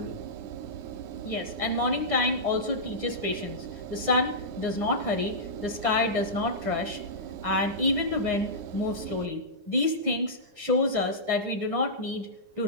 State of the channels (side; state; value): left; late; 9.7 ms